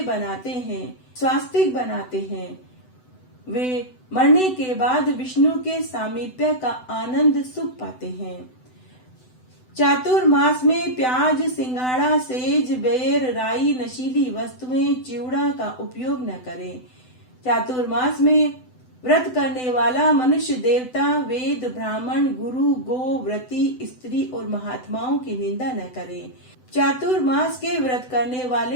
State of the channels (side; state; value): right; late; 7.9 ms